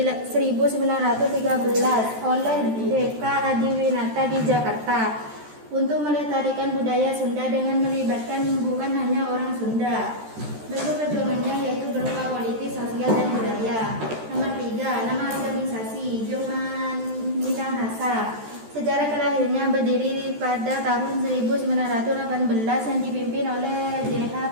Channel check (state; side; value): late; left; 13 ms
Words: oleh DK Adiwinata di Jakarta untuk melestarikan budaya Sunda dengan melibatkan bukan hanya orang Sunda. Bentuk perjuangannya yaitu berupa politik, sosial, dan budaya. Nomor 3, nama organisasi Joman Minahasa. Sejarah kelahirannya berdiri pada tahun 1918 yang dipimpin oleh JH